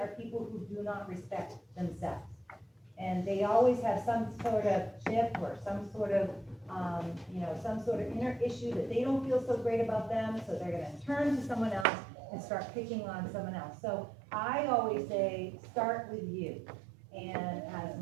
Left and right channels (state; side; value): drops out; left; at 11.9 s